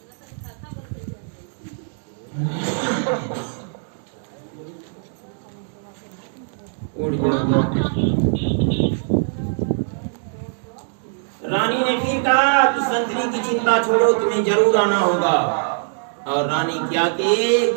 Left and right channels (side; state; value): left; silent; digital silence